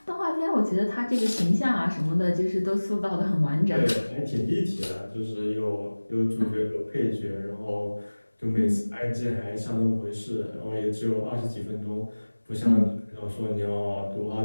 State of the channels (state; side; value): inverted; both; correlation -1.00